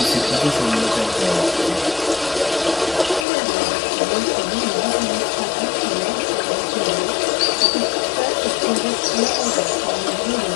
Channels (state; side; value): drops out; right; at 3.2 s